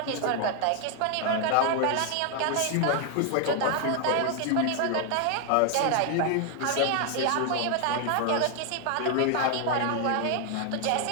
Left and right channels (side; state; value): both; different; correlation 0.00